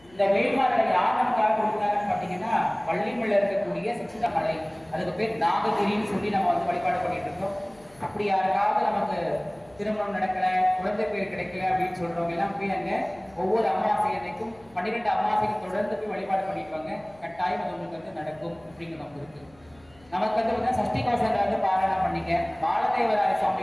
இந்த வேள்பாறை யார் நமக்காக கொடுத்தாங்கன்னு பார்த்தீங்கன்னா வள்ளிமலையில் இருக்கக்கூடிய சித்த மலை, அதுக்கு பேர் நாககிரின்னு சொல்லி நம்ம வந்து வழிபாடு பண்ணிட்டு இருக்கோம். அப்படி யாருக்காவது நமக்கு திருமணம் நடக்கல, குழந்தை பேர் கிடைக்கல அப்படின்னு சொல்றவங்க எல்லாம் போய் அங்க ஒவ்வொரு அமாவாசை அன்னைக்கும் 12 அமாவாசைக்கு தொடர்ந்து போய் வழிபாடு பண்ணிருப்பாங்க. கட்டாயம் அது உங்களுக்கு வந்து நடக்கும் அப்படிங்கிற நமக்கு இருக்கு. நமக்கு வந்து சஷ்டி கவசங்களை வந்து பாராயணம் பண்ணிக்க. பாலதேவராய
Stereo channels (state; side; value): noise; left; hum, 28 dB below the sound